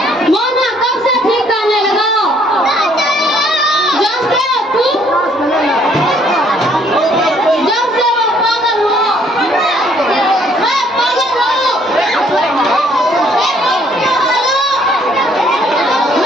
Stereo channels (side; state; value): both; normal; correlation 0.63